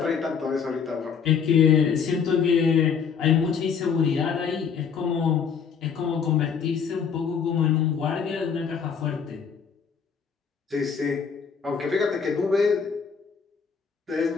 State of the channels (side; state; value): right; quieter; 6.5 dB